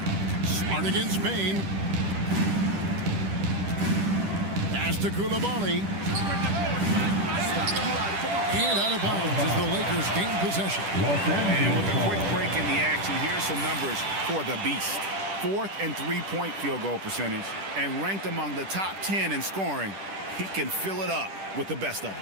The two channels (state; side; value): late; left; 10 ms